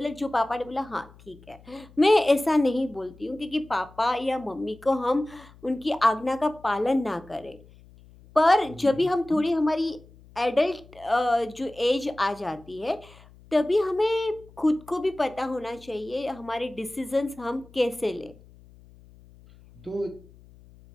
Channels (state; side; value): noise; left; hum, 24 dB below the sound